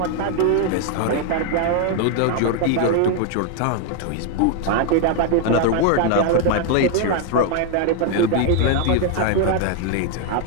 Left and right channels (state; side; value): different; both; correlation 0.00